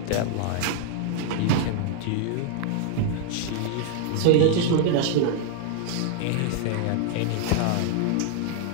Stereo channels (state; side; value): different; both; correlation 0.00